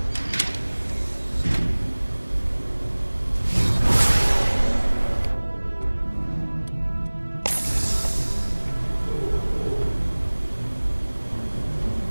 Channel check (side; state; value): both; inverted; correlation -1.00